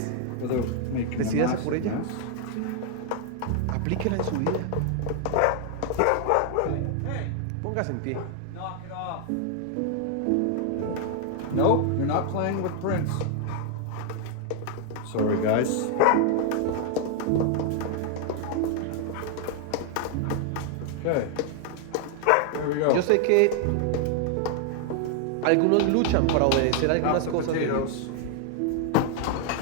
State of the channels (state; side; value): different; both; correlation 0.00